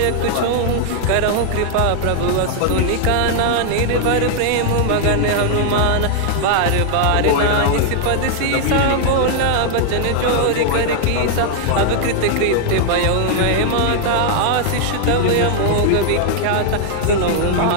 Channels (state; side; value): different; both; correlation -0.01